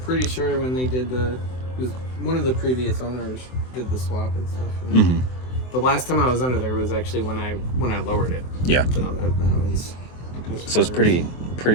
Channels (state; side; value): late; right; 23 ms